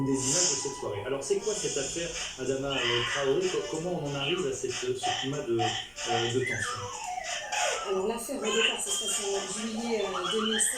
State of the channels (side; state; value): both; identical; correlation 1.00